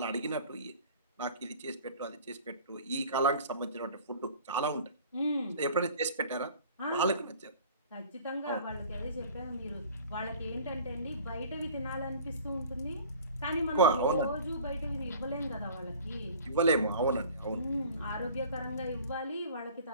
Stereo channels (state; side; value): inverted; both; correlation -0.46